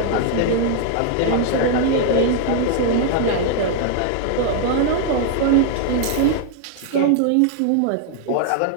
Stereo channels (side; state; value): both; different; correlation 0.00